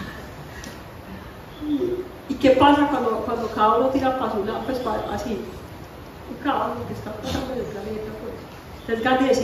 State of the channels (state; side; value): identical; both; correlation 1.00